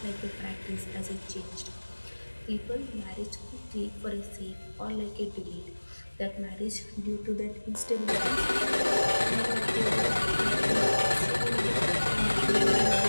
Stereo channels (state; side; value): inverted; both; correlation -1.00